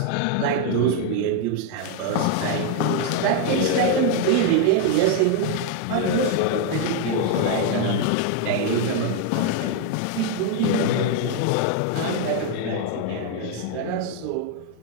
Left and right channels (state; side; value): different; both; correlation 0.01